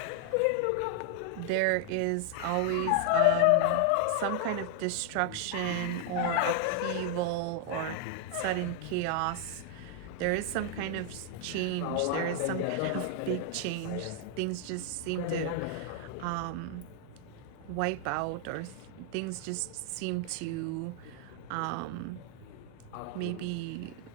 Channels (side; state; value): both; different; correlation 0.00